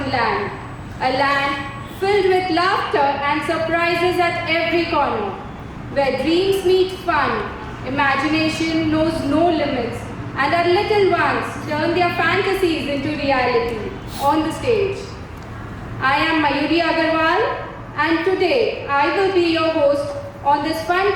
Land, a land filled with laughter and surprises at every corner, where dreams meet fun, imagination knows no limits, and our little ones turn their fantasies into reality on the stage. I am Mayuri Agarwal, and today I will be your host on this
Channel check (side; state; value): both; identical; correlation 1.00